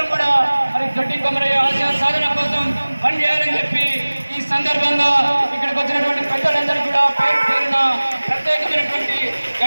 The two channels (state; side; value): inverted; both; correlation -1.00